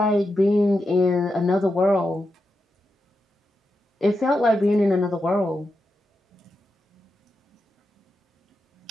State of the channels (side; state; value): both; normal; correlation 0.87